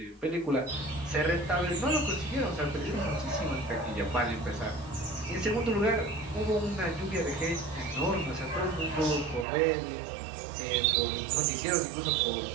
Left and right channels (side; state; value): left; drops out; at 9.5 s